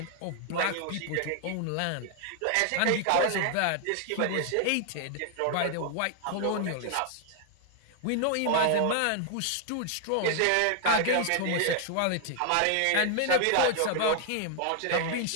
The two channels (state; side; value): different; both; correlation 0.00